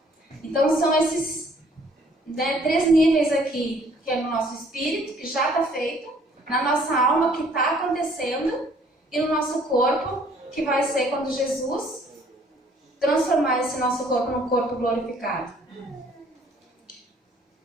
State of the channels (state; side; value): normal; both; correlation 0.60